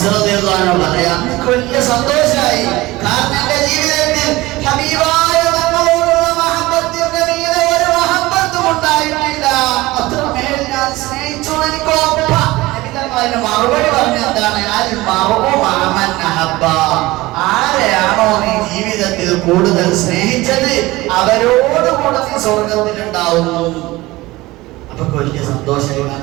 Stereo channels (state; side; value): quieter; left; 19.6 dB